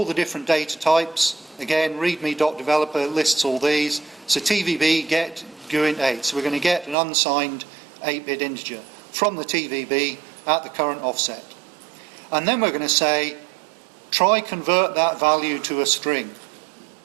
the different data types. Again, readme.developer lists all these. So TVB get GUINT 8. So we're going to get an unsigned 8-bit integer from the TVB at the current offset. And then we're going to say, try convert that value to a string.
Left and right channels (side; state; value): left; drops out; at 7.0 s